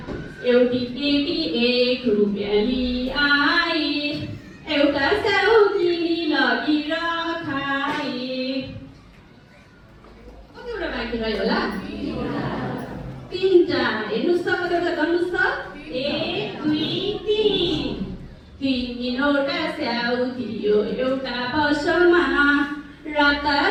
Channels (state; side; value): identical; both; correlation 1.00